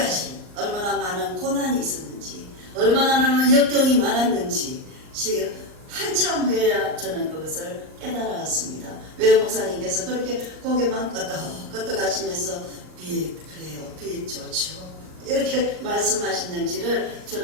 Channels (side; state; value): left; late; 38 ms